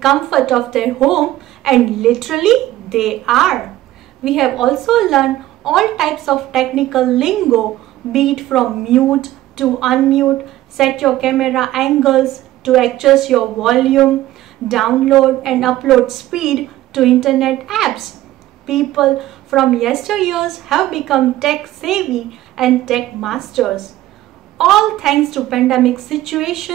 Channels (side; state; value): left; quieter; 15.1 dB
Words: of their home, and literally they are. We have also learned all types of technical lingo, be it from mute to unmute, set your camera angles, to adjust your volume, download and upload speed to internet apps. People from yesteryears have become tech savvy and tech masters. All thanks to pandemic